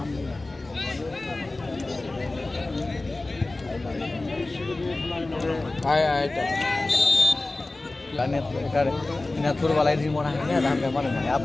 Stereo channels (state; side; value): quieter; right; 3.0 dB